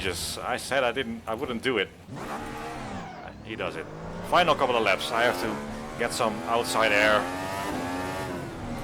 I said I wouldn't do it. He does it. Final couple of laps, I have to get some outside air.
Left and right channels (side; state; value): both; identical; correlation 1.00